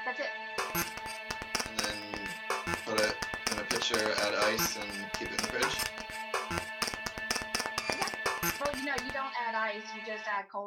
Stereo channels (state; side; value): identical; both; correlation 1.00